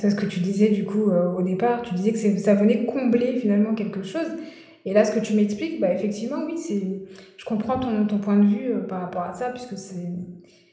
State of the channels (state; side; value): identical; both; correlation 1.00